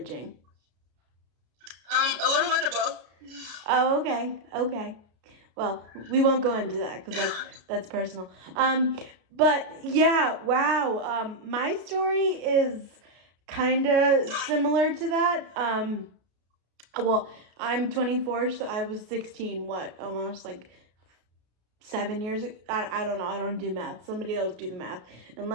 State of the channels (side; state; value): left; late; 33 ms